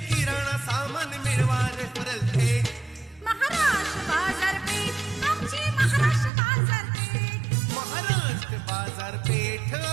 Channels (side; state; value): left; drops out; at 6.3 s